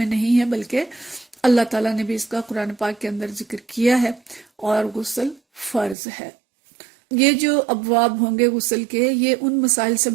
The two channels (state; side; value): drops out; left; at 6.0 s